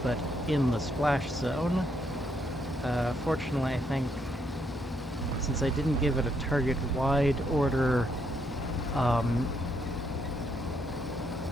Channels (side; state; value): both; normal; correlation 0.75